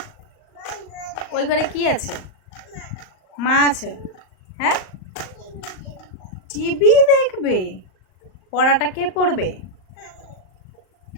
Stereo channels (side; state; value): right; late; 38 ms